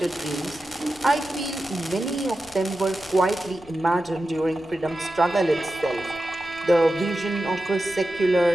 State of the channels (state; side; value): noise; left; rumble, 25 dB below the sound